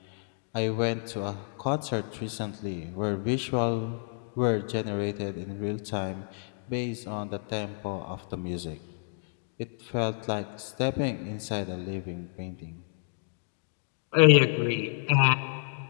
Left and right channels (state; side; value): silent; right; 58 dB below the other